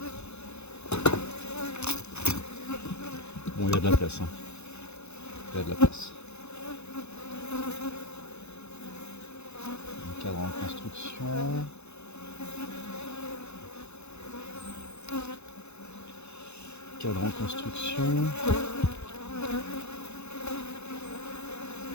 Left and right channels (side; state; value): right; late; 0.81 ms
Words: Bon, il y a de la place. Hein. Il y a de la place. Un cadre en construction. Cadre en construction.